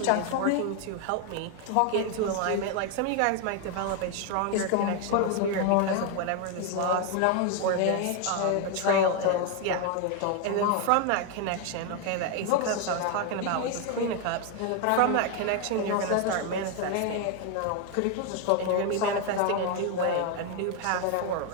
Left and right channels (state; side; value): different; both; correlation 0.01